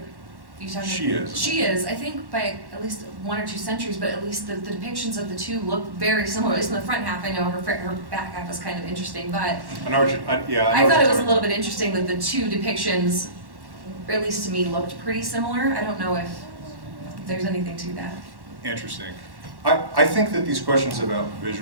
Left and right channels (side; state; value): left; late; 1.1 ms